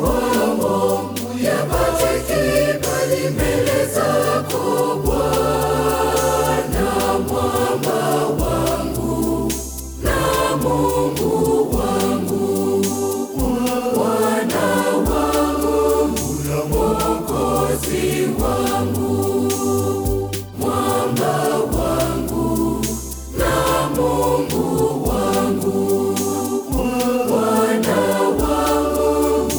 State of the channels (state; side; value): identical; both; correlation 1.00